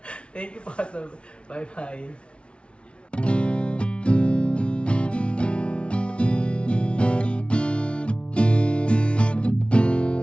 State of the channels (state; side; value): late; right; 0.059 ms